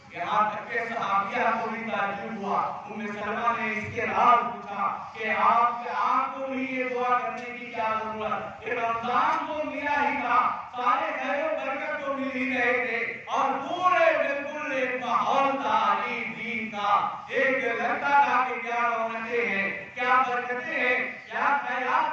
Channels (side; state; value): both; identical; correlation 1.00